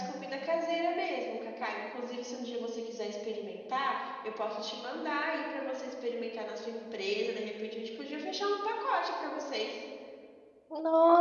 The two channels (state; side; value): identical; both; correlation 1.00